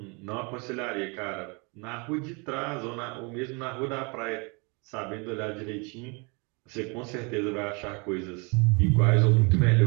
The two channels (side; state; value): left; quieter; 31.3 dB